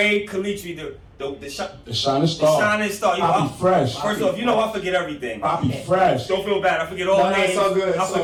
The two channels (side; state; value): both; identical; correlation 1.00